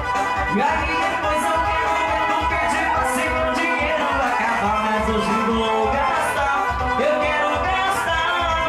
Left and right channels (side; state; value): both; identical; correlation 1.00